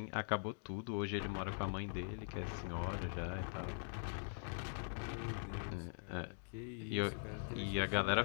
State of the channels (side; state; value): right; silent; digital silence